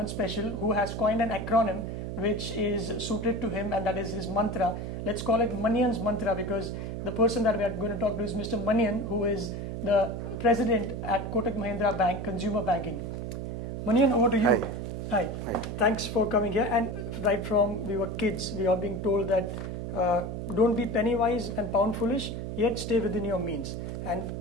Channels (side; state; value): right; noise; hum, 5 dB below the sound